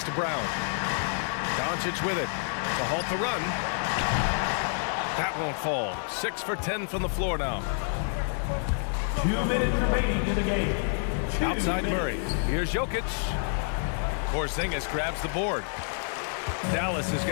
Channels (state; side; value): silent; right; 59 dB below the other